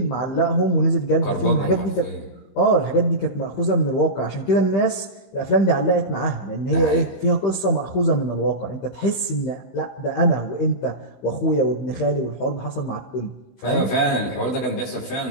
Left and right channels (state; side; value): late; right; 15 ms